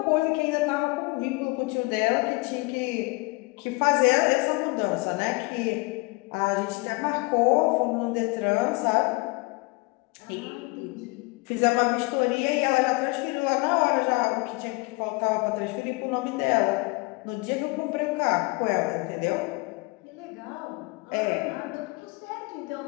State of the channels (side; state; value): right; quieter; 26.0 dB